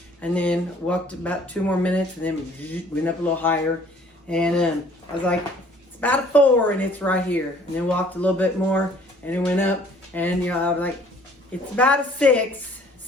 and then walked about 2 more minutes, and then went up a little higher, and I was like, it's about a 4, and it's right here. And then walked a little bit more, and it went up, and I was like, it's about a 6,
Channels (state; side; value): normal; both; correlation 0.56